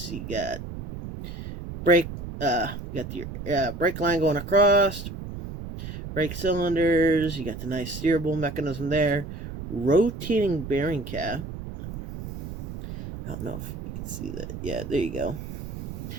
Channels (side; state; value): right; noise; rumble, 8 dB below the sound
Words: You got brake line going across. Brake cylinders. You got the nice steerable mechanism there. Rotating bearing cap. I don't know if you can see that. Yeah, there you go.